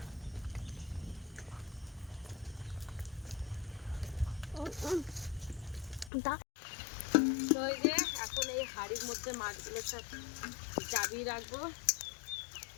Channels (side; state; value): right; drops out; at 6.1 s